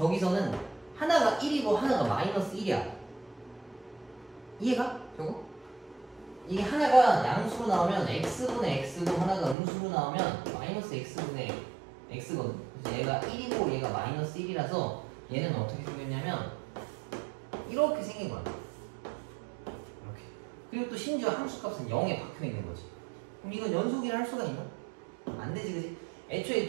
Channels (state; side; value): drops out; left; at 9.6 s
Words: 하나가 1이고 하나가 마이너스 1이야. 이해가? 저거? 이게 하나가 양수로 나오면 x분의 x고 하나가 음수로 나오면 마이너스 x분의 x거든. 그래서 얘가 1이고 얘가 마이너스 1이라서 얘는 어떻게 생겼냐면 이렇게 생긴 거야. 이렇게. 그리고 또 심지어 함수값은 0에 박혀있는 거지. 그럼 이건 연속이라 할 수가 있나? 안 되지, 그지? 애초에